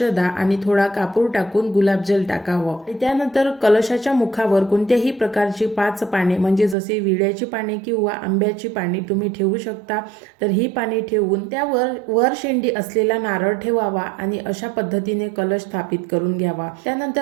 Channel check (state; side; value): drops out; left; at 6.8 s